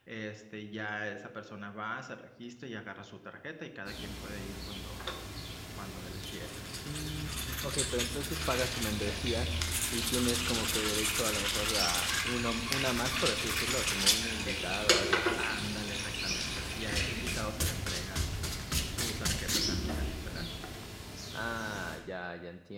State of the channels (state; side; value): identical; both; correlation 1.00